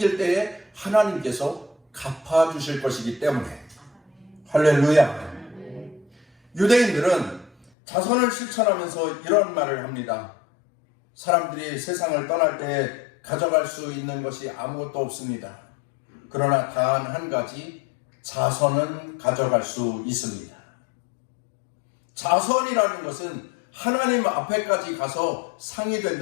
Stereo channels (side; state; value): right; drops out; at 7.7 s